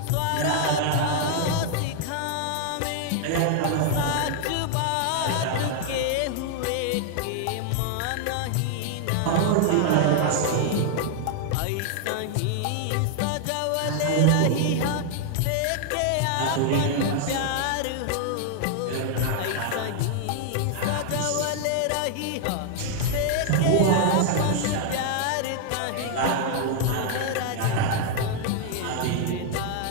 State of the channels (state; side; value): different; both; correlation 0.00